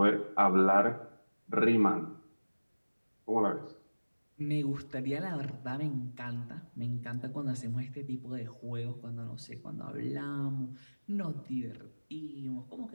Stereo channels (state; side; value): inverted; both; correlation -1.00